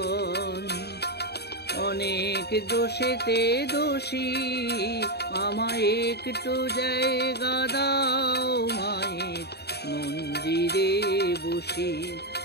অনেক দোষেতে দোষী, আমায় একটু জায়গা দাও। মায়ের মন্দিরে বসি,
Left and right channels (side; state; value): right; late; 0.48 ms